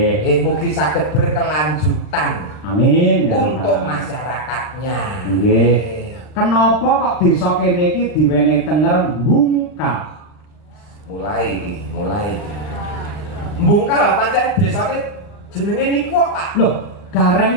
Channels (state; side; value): late; right; 39 ms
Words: Mugi saged berkelanjutan. Amin ya untuk masyarakatnya. Nggih. Kenapa kok desa kene iki diwenehi tenger Bungkal? Mulai. Bungkal pancen desane jenenge niku kok Pak. Loh,